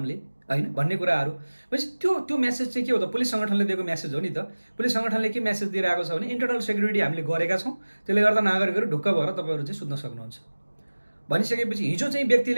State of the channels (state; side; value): inverted; both; correlation -1.00